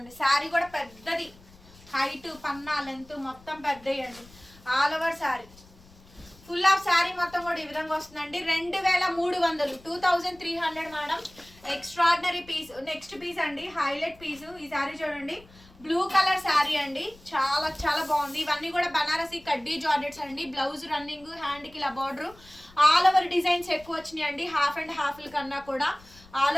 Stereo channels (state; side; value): noise; left; rumble, 24 dB below the sound